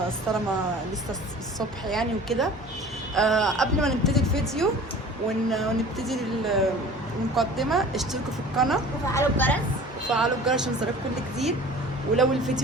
الصلاه لسه الصبح يعني وكده. قبل ما نبتدي الفيديو ونبتدي المقدمه، اشتركوا في القناه وفعلوا الجرس عشان يوصلكم كل جديد. ولو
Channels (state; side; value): normal; both; correlation 0.43